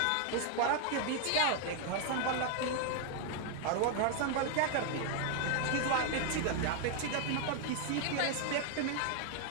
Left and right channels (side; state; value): both; different; correlation 0.00